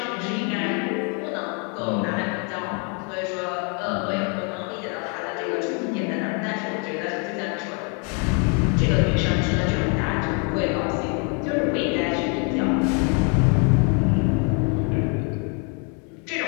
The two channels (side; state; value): right; quieter; 37.0 dB